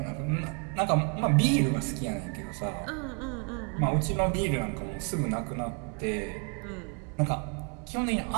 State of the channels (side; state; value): left; quieter; 37.3 dB